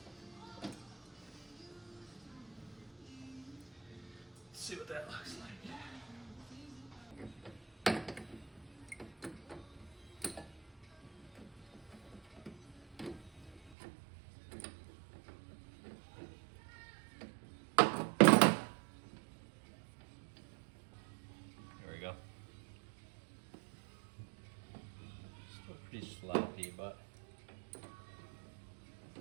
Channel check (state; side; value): drops out; left; at 13.7 s